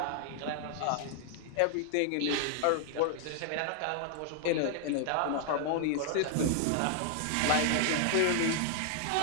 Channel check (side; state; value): both; different; correlation 0.00